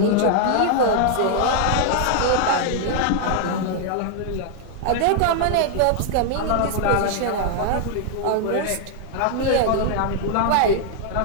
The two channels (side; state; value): both; different; correlation 0.00